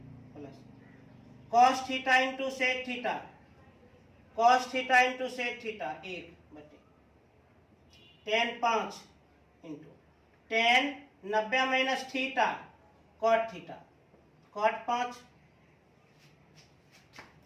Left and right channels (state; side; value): identical; both; correlation 1.00